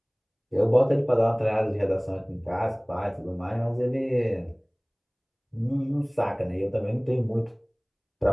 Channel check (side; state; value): both; identical; correlation 1.00